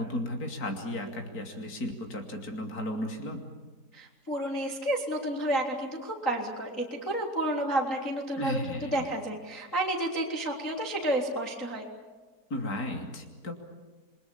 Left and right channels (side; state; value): right; late; 3.8 ms